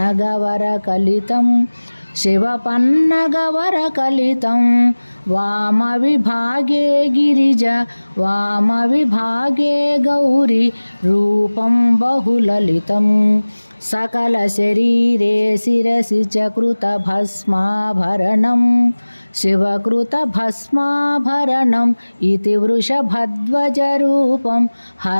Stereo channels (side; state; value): both; inverted; correlation -1.00